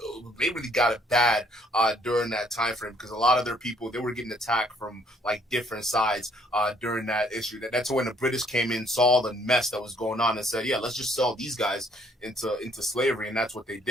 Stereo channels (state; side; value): normal; both; correlation 0.65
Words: They really got it bad during that time frame, because a lot of their people, they were getting attacked from like different sides during that issue. That's when the British came in, saw the mess that was going on, and said, "Yeah, let's just sell these guys into slavery," and that's what they